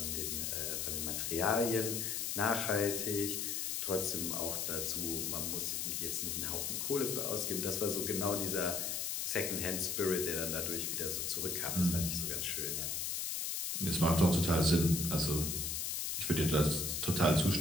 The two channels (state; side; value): noise; left; hiss, 1 dB below the sound